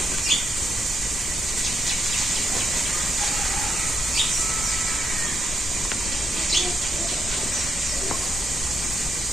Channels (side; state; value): both; normal; correlation 0.81